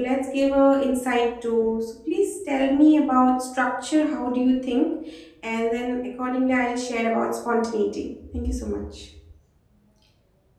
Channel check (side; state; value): both; identical; correlation 1.00